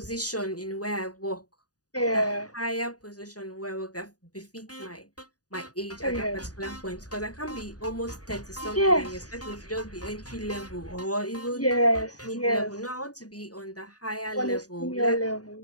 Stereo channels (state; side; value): late; right; 0.68 ms